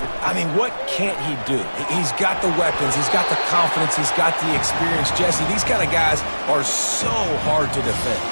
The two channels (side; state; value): both; inverted; correlation -1.00